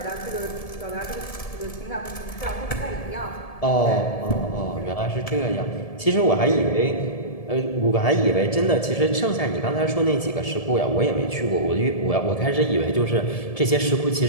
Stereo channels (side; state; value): right; late; 1.7 ms